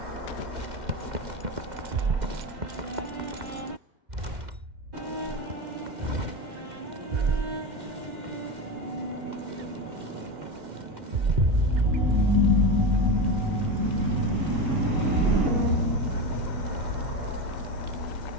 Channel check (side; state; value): left; late; 2.1 ms